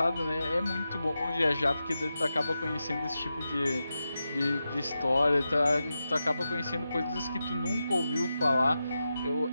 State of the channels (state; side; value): inverted; both; correlation -0.90